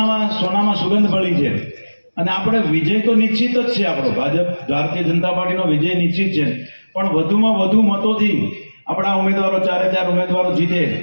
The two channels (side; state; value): both; inverted; correlation -1.00